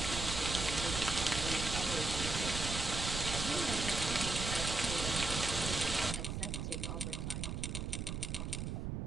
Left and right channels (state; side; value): noise; right; rumble, 3 dB below the sound